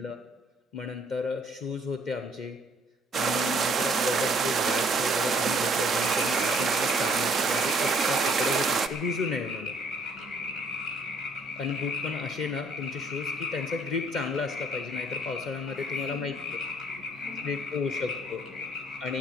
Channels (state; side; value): normal; both; correlation 0.62